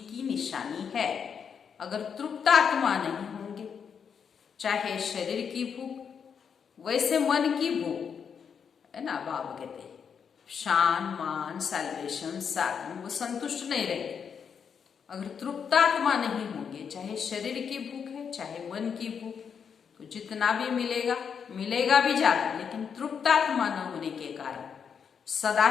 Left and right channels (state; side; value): quieter; right; 6.9 dB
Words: निशानी है। अगर तृप्त आत्मा नहीं होंगे, चाहे शरीर की भूख, वैसे मन की भूख है ना, बाबा कहते हैं शान, मान, सैल्वेशन, साधन, वो संतुष्ट नहीं रहेंगे। अगर तृप्त आत्मा नहीं होंगे, चाहे शरीर की भूख है चाहे मन की भूख, तो जितना भी मिलेगा, मिलेगा भी ज्यादा, लेकिन तृप्त आत्मा न होने के कारण सदा